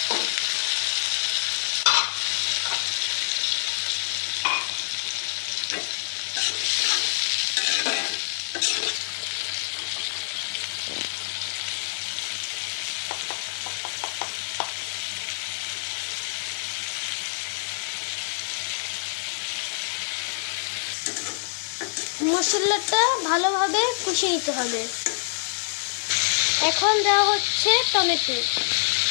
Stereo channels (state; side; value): silent; right; digital silence